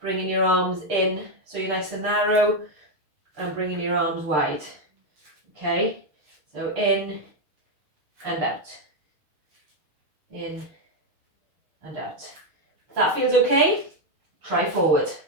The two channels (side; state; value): left; late; 6.5 ms